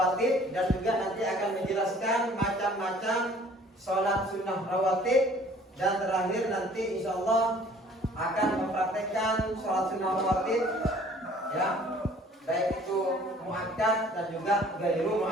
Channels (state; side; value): normal; both; correlation 0.54